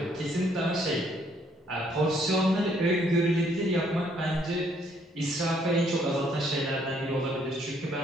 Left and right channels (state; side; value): normal; both; correlation 0.67